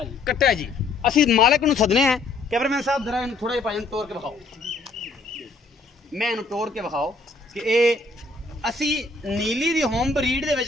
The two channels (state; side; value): quieter; right; 3.5 dB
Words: कट्टा जी। असीं मालिक नूं सदने हैं। कैमरामैन साहब जरा थोड़ा जिहा भाई तोड़ के विखाओ, मैं इन्हूं तोड़ के विखाओ कि ये असी नीली दी होम ब्रीड दे